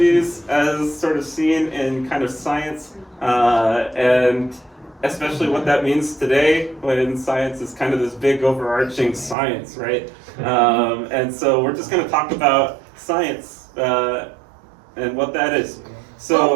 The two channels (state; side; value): drops out; left; at 9.3 s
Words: as sort of seen in kind of science, and especially what that means today when science is kind of this big overarching science, right? And so we're just going to talk about science and what that is.